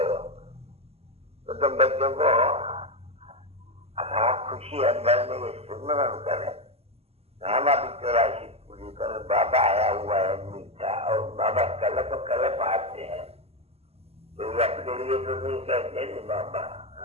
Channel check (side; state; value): left; late; 0.29 ms